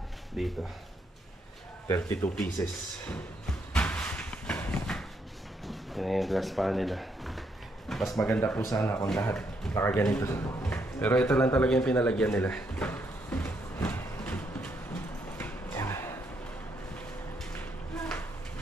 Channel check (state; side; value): normal; both; correlation 0.75